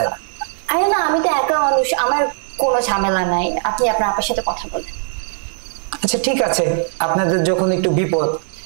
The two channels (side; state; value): left; silent; digital silence